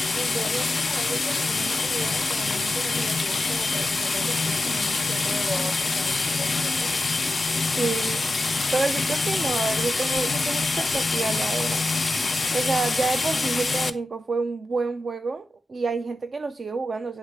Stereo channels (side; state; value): both; normal; correlation 0.91